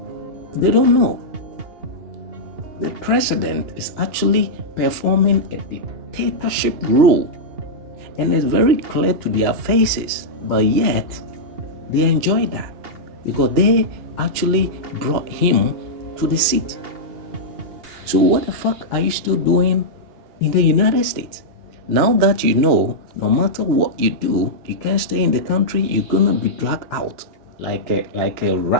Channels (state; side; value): late; left; 2.8 ms